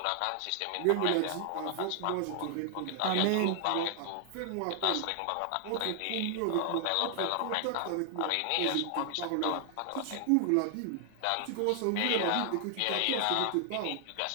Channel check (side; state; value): both; different; correlation 0.00